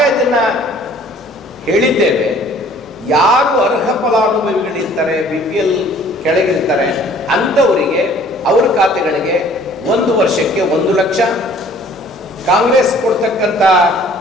ಅದನ್ನ ಹೇಳಿದ್ದೇವೆ. ಯಾರು ಅರ್ಹ ಫಲಾನುಭವಿಗಳಿರ್ತಾರೆ, BPL ಕೆಳಗಿರ್ತಾರೆ, ಅಂಥವರಿಗೆ ಅವ್ರ ಖಾತೆಗಳಿಗೆ 1 ವರ್ಷಕ್ಕೆ 1 ಲಕ್ಷ, ಕಾಂಗ್ರೆಸ್ ಕೊಡ್ತಕ್ಕಂಥ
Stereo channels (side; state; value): both; normal; correlation 0.54